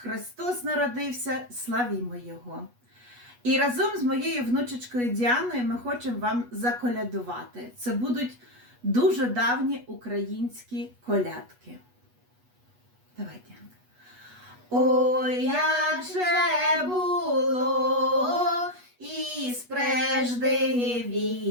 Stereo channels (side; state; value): left; late; 8.2 ms